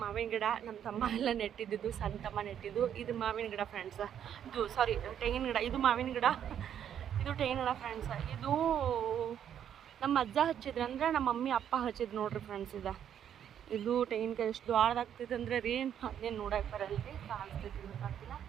ಮಾವಿನ ಗಿಡ ನಮ್ಮ ತಮ್ಮ ಎಲ್ಲ ನೆಟ್ಟಿದ್ದು, ಸಣ್ಣ ತಮ್ಮ ನೆಟ್ಟಿದ್ದು. ಇದು ಮಾವಿನ ಗಿಡ ಫ್ರೆಂಡ್ಸ್. ಇದು ಸಾರಿ ತೆಂಗಿನ ಗಿಡ. ಇದು ಮಾವಿನ ಗಿಡ, ಇದು ತೆಂಗಿನ ಗಿಡ ಫ್ರೆಂಡ್ಸ್. ಇದು ನಮ್ಮ ಅಜ್ಜ ಹಚ್ಚಿದ್ರು, ಅಂದರೆ ನಮ್ಮ ಮಮ್ಮಿ ಅಪ್ಪ ಹಚ್ಚಿದ್ರು ನೋಡ್ರಿ ಫ್ರೆಂಡ್ಸ್. ಇದು ತೆಂಗಿನಕಾಯಿ ಎಷ್ಟು ದೊಡ್ಡದಾಗ್ತೈತೆ ಅಂದರೆ ರೀ, ಅದೇನು ನೋಡಕ್ಕೆ ಬರಲ್ರಿ, ಕಾಣಿಸ್ತೈತಿ ಗೊತ್ತಾಗ್ತಿಲ್ಲ.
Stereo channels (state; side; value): quieter; left; 9.4 dB